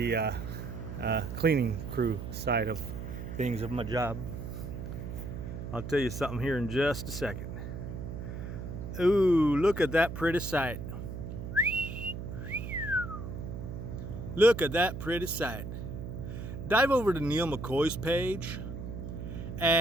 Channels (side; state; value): right; noise; hum, 7 dB below the sound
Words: cleaning crew side of things of my job. I'll tell you something here in just a second. Ooh, look at that pretty sight. Look at that pretty sight. Dive over to Neal McCoy's page